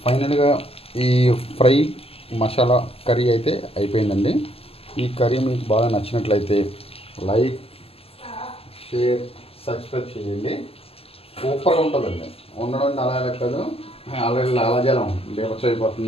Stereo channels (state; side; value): late; right; 0.28 ms